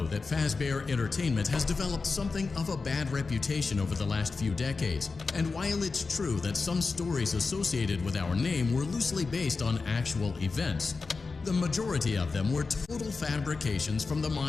that Fazbear Entertainment has developed something of a bad reputation over the last few decades, and while it's true that some stories associated with our name were loosely based on actual events, the majority of them were total fabrications from the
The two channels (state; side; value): quieter; right; 4.3 dB